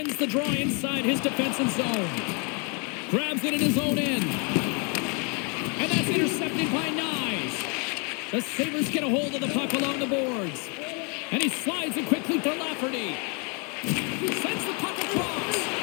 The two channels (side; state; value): right; quieter; 35.1 dB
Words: the draw inside his defensive zone. Grabs it in his own end. And that's intercepted by Nyes. The Sabres get a hold of the puck along the boards. And he slides it quickly for Lafferty. Sends the puck across.